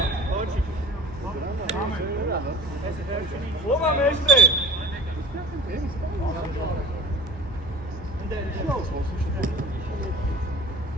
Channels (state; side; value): normal; both; correlation 0.42